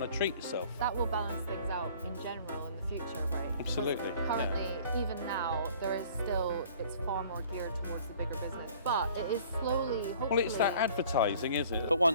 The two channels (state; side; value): inverted; both; correlation -0.52